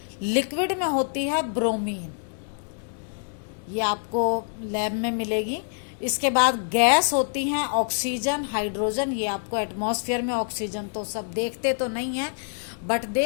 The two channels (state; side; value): silent; right; digital silence